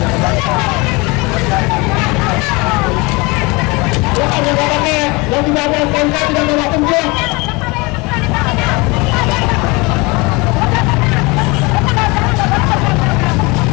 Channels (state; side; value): quieter; right; 25.9 dB